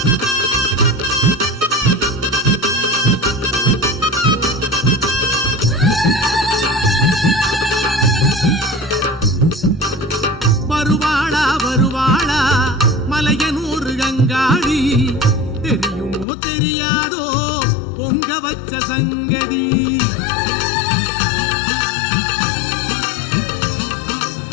வருவாளா வருவாளா மலையனூர் கங்காளி தெரியுமோ தெரியாதோ பொங்க வச்ச சங்கதி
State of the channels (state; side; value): drops out; right; at 16.2 s